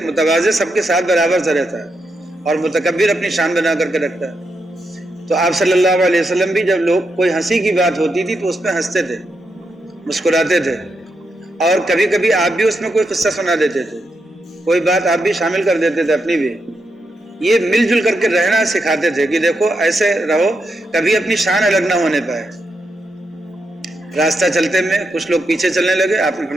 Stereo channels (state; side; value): normal; both; correlation 0.83